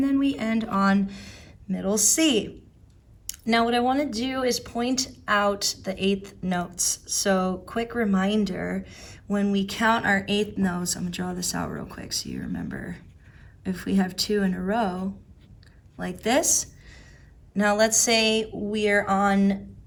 then we end on middle C. Now what I want to do is point out the eighth notes. So quick reminder, when we count our eighth notes, I'm going to draw this out real quick so you remember. If we have two in a row, like this. Now let's say we're on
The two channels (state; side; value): identical; both; correlation 1.00